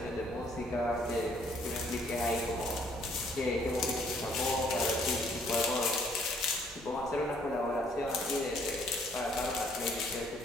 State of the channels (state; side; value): normal; both; correlation 0.64